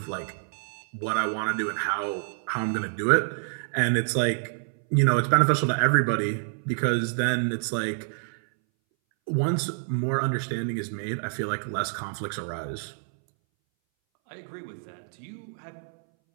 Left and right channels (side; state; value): left; silent; 60 dB below the other